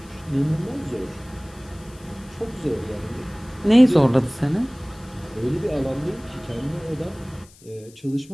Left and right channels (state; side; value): noise; left; hiss, 25 dB below the sound